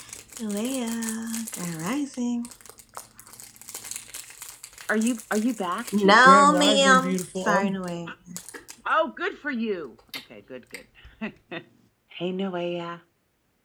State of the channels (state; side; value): identical; both; correlation 1.00